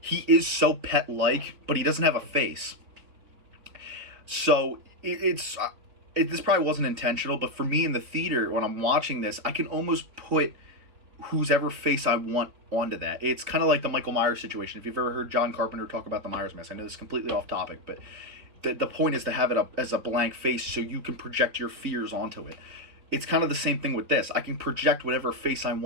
He is so pet-like, but he doesn't have a face. So this probably wasn't intentional, but for me in the theater, when I'm watching this, I can almost put whosever face I want onto that. It's kind of like the Michael Myers situation. If you've ever heard John Carpenter talk about the Myers mask, I know this is completely off topic, but the point is to have it up as a blank face so you can project your fears onto it. It's kind of the same thing with this. I can project whatever face I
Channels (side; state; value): left; late; 3.9 ms